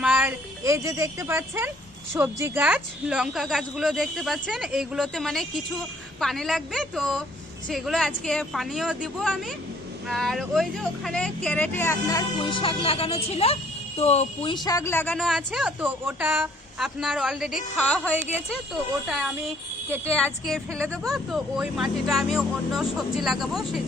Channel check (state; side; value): normal; both; correlation 0.61